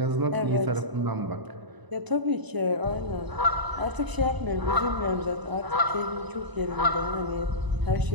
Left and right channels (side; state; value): left; late; 1.0 ms